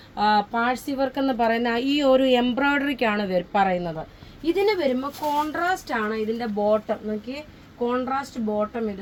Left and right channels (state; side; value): identical; both; correlation 1.00